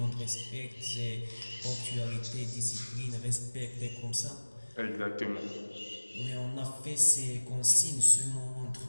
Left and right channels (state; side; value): inverted; both; correlation -1.00